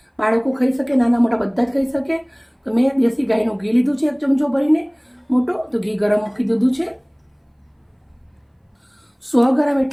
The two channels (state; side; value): identical; both; correlation 1.00